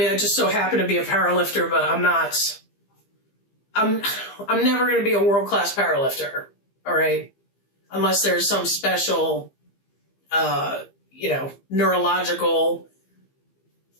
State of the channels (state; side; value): late; right; 15 ms